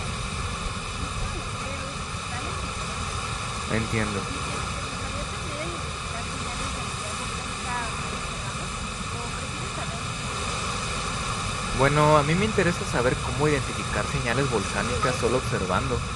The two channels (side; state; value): both; identical; correlation 1.00